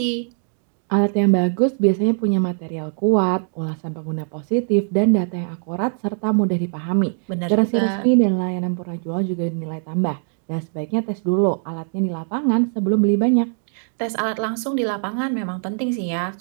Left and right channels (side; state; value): left; silent; 55 dB below the other